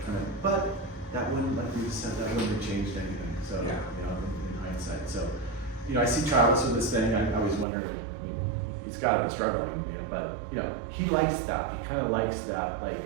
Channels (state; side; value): drops out; left; at 7.7 s